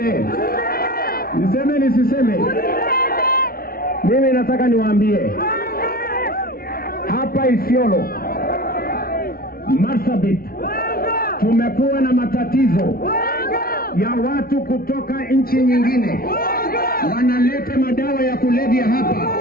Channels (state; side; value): late; right; 0.43 ms